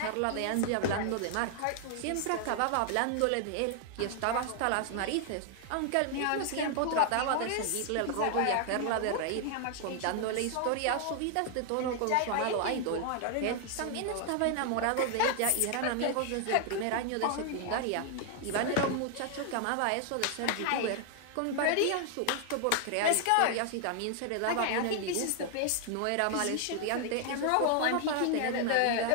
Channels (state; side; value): different; both; correlation 0.00